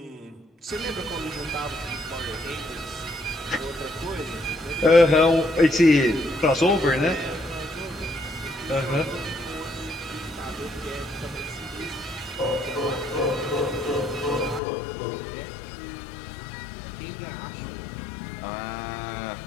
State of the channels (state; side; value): drops out; right; at 14.6 s